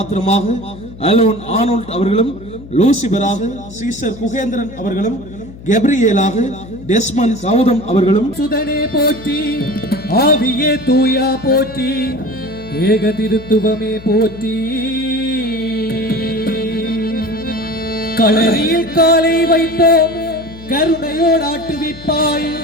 அலோன் ஆனோல்ட் அவர்களும், லூசிபராக சீசர் குகேந்திரன் அவர்களும், கெப்ரியேலாக டெஸ்மன் கௌதம் அவர்களும், சுதனே போற்றி, ஆவியே தூயா போற்றி, ஏக திருத்துவமே போற்றி. களரியில் காலை வைப்போம், கருணையோடு ஆட்டுவிப்பாய்,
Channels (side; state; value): left; noise; hum, 17 dB below the sound